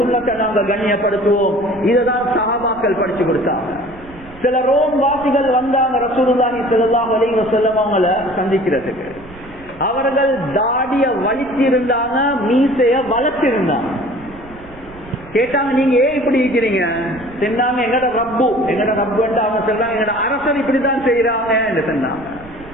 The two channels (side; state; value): right; noise; rumble, 20 dB below the sound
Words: நாங்க கண்ணியப்படுத்துவோம். இதுதான் சஹாபாக்கள் படிச்சு கொடுத்தாங்க. சில ரோம் வாசிகள் வந்தாங்க ரசூலுல்லாஹி ஸல்லல்லாஹு அலைஹி வஸல்லம் அவங்கள சந்திக்கிறதுக்கு. அவர்கள் தாடிய வலிச்சிருந்தாங்க, மீசைய வளர்த்திருந்தாங்க. கேட்டாங்க, நீங்க ஏன் இப்படி இருக்கிறீங்க? சொன்னாங்க, எங்கட ரப்பு அவங்க சொல்றாங்க, எங்கட அரசர் இப்படிதான் செய்யறாங்க என்று சொன்னாங்க.